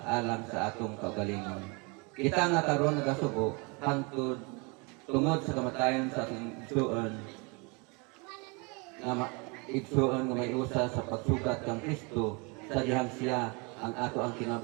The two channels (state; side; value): quieter; left; 30.3 dB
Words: alang sa atong kaugalingon. Kita nga karon nagasubo hangtod tungod sa kamatayon sa atong igsuon. Igsuon nga may usa sa pagsugat kang Kristo sa dihang siya ang ato ang